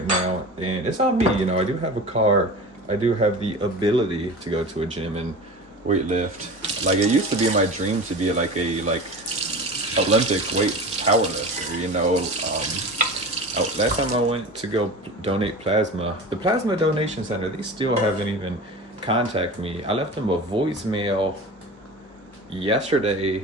now, and it's on me. I do have a car. I do have the ability to go to a gym and weight lift. Like, it used to be my dream to be like a Olympic weight power lifter. Last time I went to go donate plasma, the plasma donation center, they still haven't even contacted me. I left them a voicemail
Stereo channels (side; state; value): both; normal; correlation 0.33